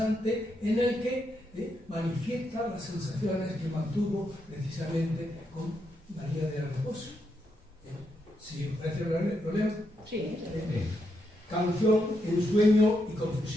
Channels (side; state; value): both; normal; correlation 0.81